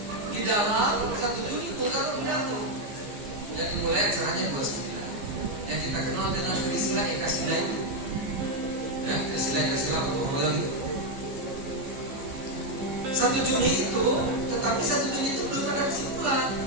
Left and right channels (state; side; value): late; left; 15 ms